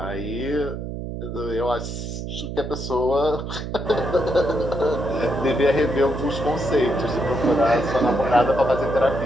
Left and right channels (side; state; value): right; noise; hum, 6 dB below the sound